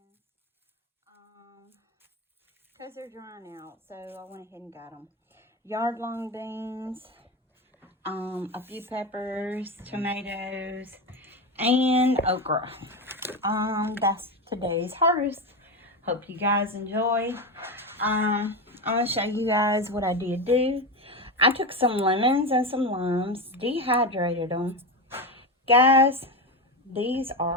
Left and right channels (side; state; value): both; normal; correlation 0.16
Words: because they're drying out, so I went ahead and got them. Yard long beans, a few peppers, tomatoes, and okra. That's today's harvest. Hope you guys enjoy. I'm gonna show you guys what I did do. I took some lemons and some limes, dehydrated them. Guys, these